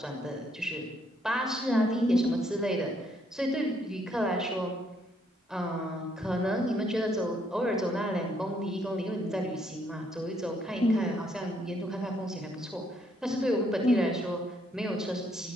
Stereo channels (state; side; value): normal; both; correlation 0.70